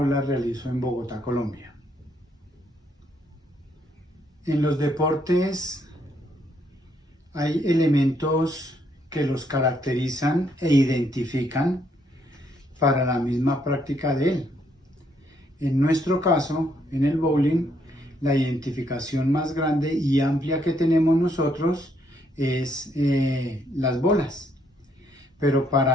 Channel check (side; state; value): both; normal; correlation 0.72